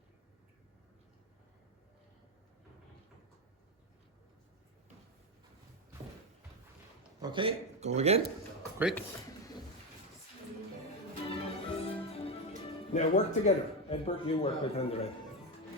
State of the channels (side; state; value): both; normal; correlation 0.12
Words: Okay, go again. Quick. Now work together. Edward, you work with Andrea.